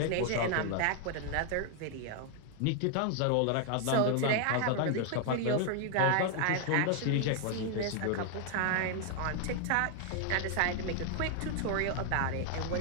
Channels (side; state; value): both; different; correlation 0.00